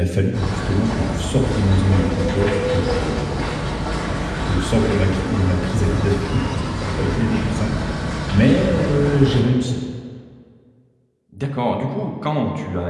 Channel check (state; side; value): identical; both; correlation 1.00